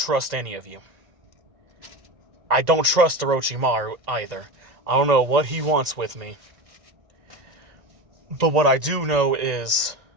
any of you. I don't trust Orochimaru either. I don't know what he wants with me. But what I do know is,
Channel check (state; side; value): late; left; 1.9 ms